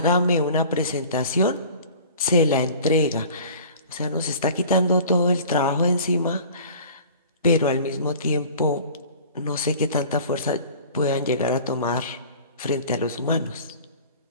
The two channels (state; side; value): inverted; both; correlation -0.44